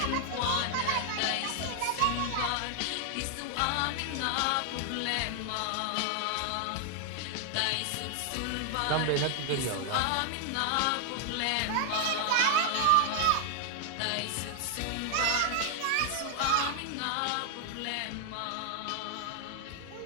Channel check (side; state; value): both; different; correlation 0.00